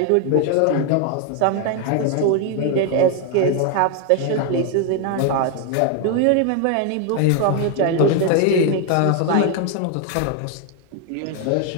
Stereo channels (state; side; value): different; both; correlation 0.01